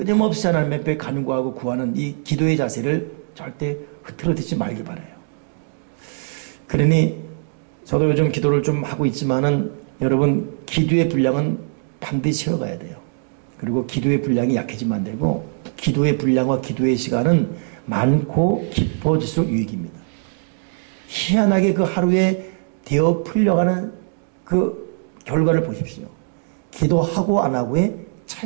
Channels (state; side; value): silent; left; 64 dB below the other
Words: 하나님 앞에 간구하고 구하는 이 기도의 자세를 절대 흐트러뜨리지 말기 바라요. 그러니 저도 요즘 기도를 좀 하고 있지만은 여러분 기도의 분량은 반드시 채워가야 돼요. 그리고 기도의 분량이 약해지면 안 되고 기도의 분량과 기도의 시간은 많고 깊어질수록 유익입니다. 희한하게 그 하루에 되어 풀려가는 그 결과를 보십시오. 기도하고 안 하고의